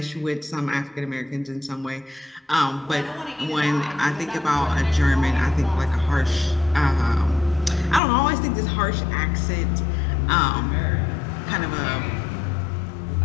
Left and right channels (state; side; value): drops out; right; at 8.0 s